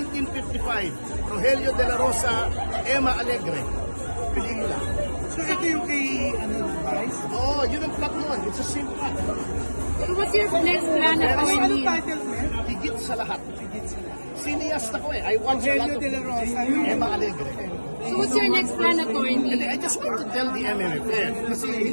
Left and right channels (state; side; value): inverted; both; correlation -1.00